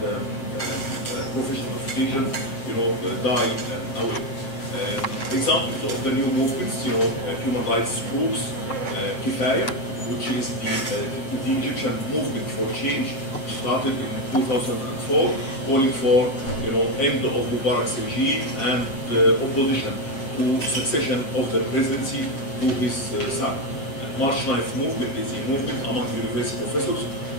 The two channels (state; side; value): late; right; 7.5 ms